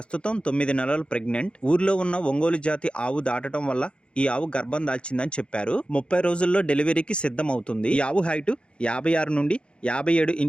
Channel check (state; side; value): late; right; 0.056 ms